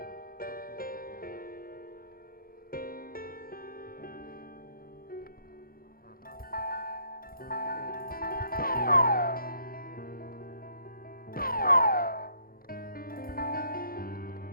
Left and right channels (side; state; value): right; late; 0.42 ms